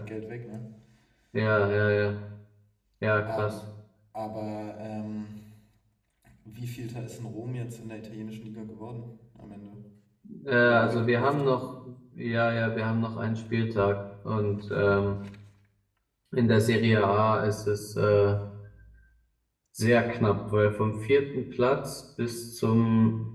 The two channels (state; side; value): identical; both; correlation 1.00